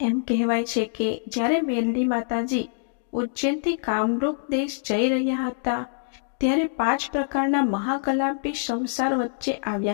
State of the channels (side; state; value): right; silent; digital silence